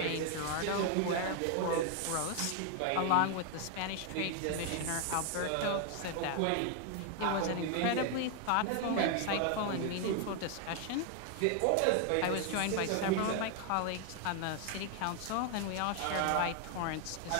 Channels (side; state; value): both; different; correlation 0.01